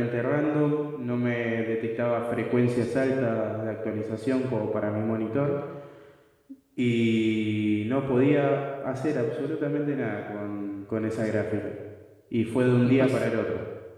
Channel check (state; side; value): identical; both; correlation 1.00